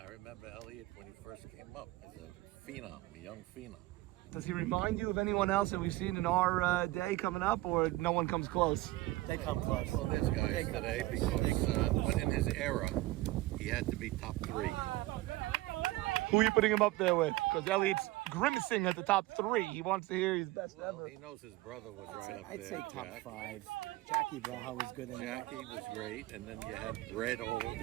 remember Elliot when he first came up as a phenom, a young phenom. Does he remind you of anyone else that we've seen in our day coming up, or no one comes close? They come close. Well, there's guys today because but in his era, he had to be top 3. Who are you putting him up there with? Because Elliot's grimacing at the top 3. He wants to hear his best ever. He knows his brother was right up I'd there. say top Jack. 5. Jackie Braha was good in that. Jackie was great, and then you had Red,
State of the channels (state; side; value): quieter; left; 18.7 dB